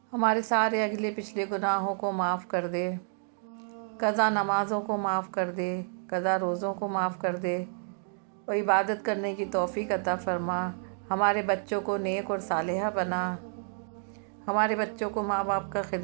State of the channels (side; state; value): left; silent; 58 dB below the other